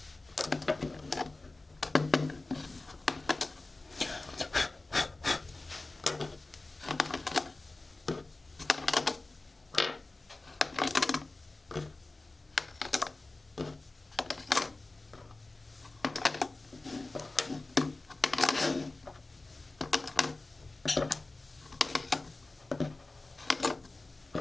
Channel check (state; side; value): quieter; right; 3.1 dB